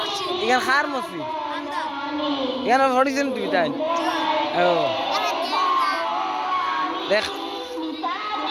ইগান খার মসজিদ ইগান হরিছেন তুমি তাই ও দেখ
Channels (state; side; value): identical; both; correlation 1.00